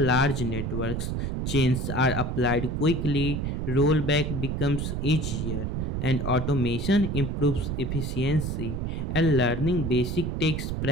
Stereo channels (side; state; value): right; noise; rumble, 2 dB below the sound